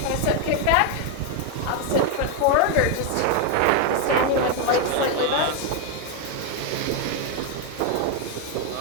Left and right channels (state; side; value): different; both; correlation 0.01